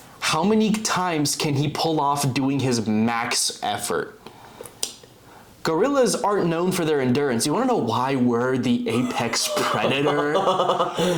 how many times can he pull off doing his max effort? Gorillas aren't known for their endurance. You want to know why we're the apex predator?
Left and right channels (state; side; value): identical; both; correlation 1.00